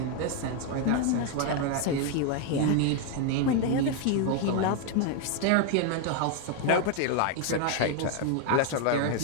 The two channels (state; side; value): different; both; correlation 0.01